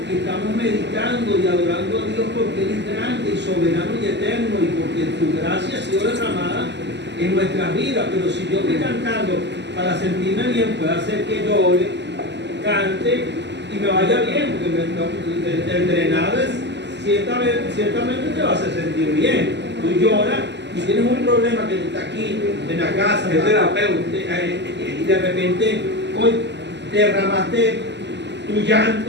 estamos meditando y adorando a Dios porque Él es grande y soberano y eterno y porque su gracia ha sido derramada en nuestras vidas. Pero si yo estoy cantando para sentirme bien, puede hacer que llore, cante y me vaya bien, porque el drenado es, ciertamente te va a hacer sentir bien. Tú lloras y tienes un problema que está aquí en la casa, el terapeuta, y de repente hoy derramaste tu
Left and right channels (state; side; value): late; left; 0.51 ms